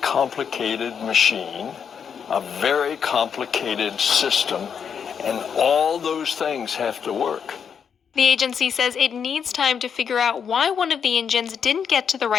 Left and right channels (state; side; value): quieter; right; 7.1 dB